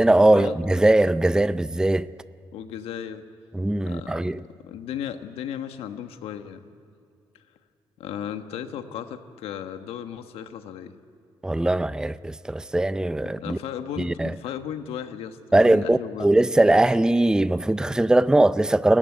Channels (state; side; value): normal; both; correlation 0.95